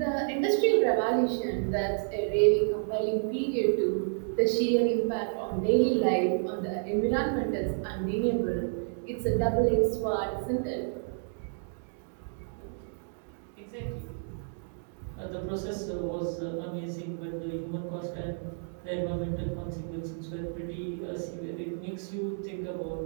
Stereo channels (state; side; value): silent; left; digital silence